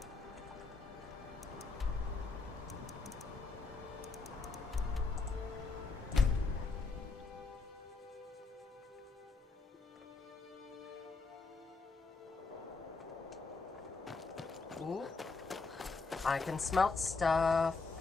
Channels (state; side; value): quieter; right; 4.0 dB